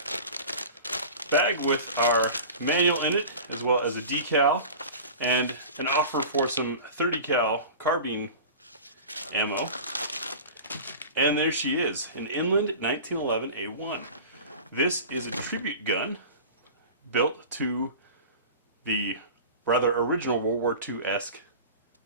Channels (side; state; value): both; inverted; correlation -0.36